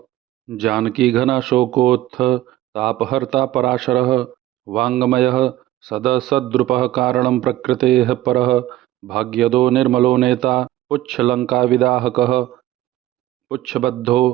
जानकीघनाशोकोत्थ तापहर्ता पराशरः वाङ्मयः सदसद्रुपः कारणं प्रकृतेः परः भाग्यदो निर्मलो नेता पुच्छलङ्काविदाहकः पुच्छबद्धो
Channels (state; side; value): quieter; left; 15.1 dB